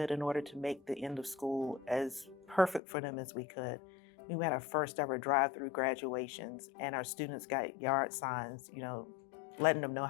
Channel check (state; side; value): drops out; right; at 2.8 s